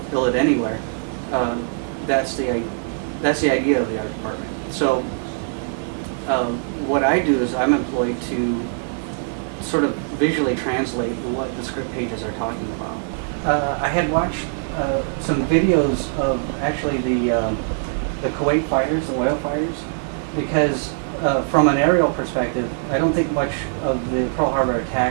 build it anywhere, that's the idea of the art department. So what I do is I'm employed to sort of visually translate what the script pages are talking about. I had watched some videos of actually the Kuwait fighters, the oil fighters, because from an aerial perspective, I don't think much of the Pearl Harbor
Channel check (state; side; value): silent; left; digital silence